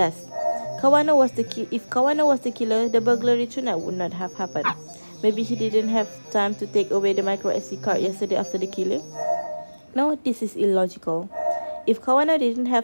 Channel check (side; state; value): both; inverted; correlation -1.00